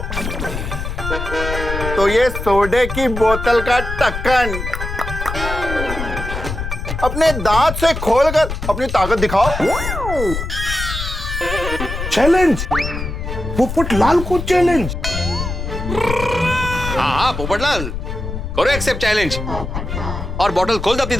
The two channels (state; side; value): noise; left; rumble, 5 dB below the sound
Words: तो ये सोडे की बोतल का ढक्कन अपने दांत से खोलकर अपनी ताकत दिखाओ। चैलेंज, पोपटलाल को चैलेंज। हाँ पोपटलाल, करो एक्सेप्ट चैलेंज और बॉटल खोल दो अपनी